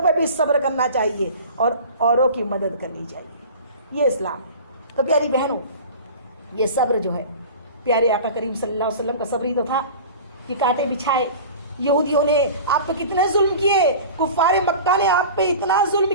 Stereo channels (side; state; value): both; inverted; correlation -0.38